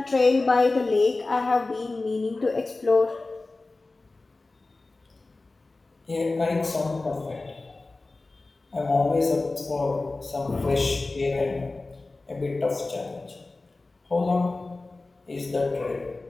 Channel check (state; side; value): quieter; right; 3.3 dB